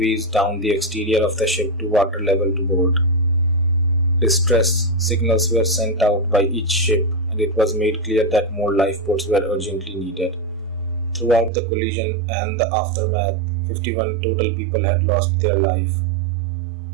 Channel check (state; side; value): drops out; left; at 11.5 s